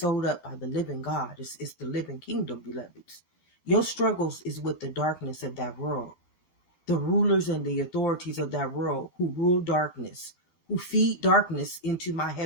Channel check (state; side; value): late; right; 13 ms